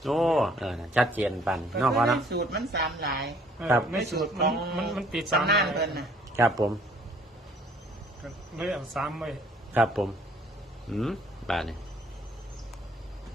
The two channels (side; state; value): both; normal; correlation 0.59